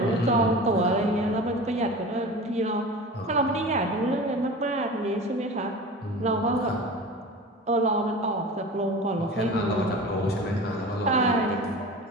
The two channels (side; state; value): both; normal; correlation 0.35